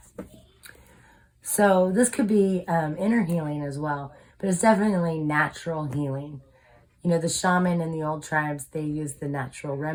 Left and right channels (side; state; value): both; identical; correlation 1.00